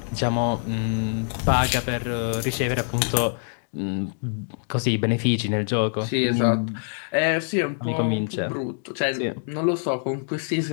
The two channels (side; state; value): right; silent; digital silence